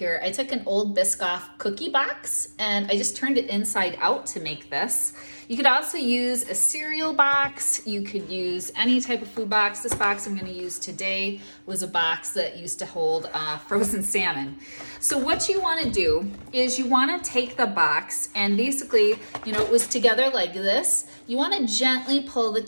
I took an old Biscoff cookie box and I just turned it inside out to make this. You could also use a cereal box. You could use any type of food box. This box I'm gonna use today was a box that used to hold frozen salmon. So what you wanna do is you wanna take the box and basically, it was together like this. You wanna gently pull the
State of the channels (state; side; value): inverted; both; correlation -1.00